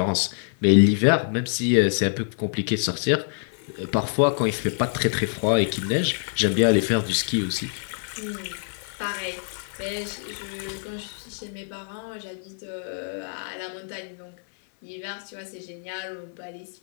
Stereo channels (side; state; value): right; silent; 57 dB below the other